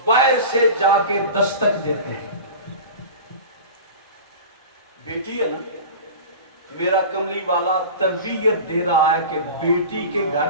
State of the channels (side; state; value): both; inverted; correlation -0.33